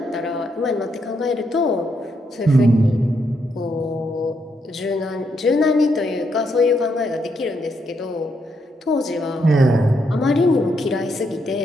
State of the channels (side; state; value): both; normal; correlation 0.78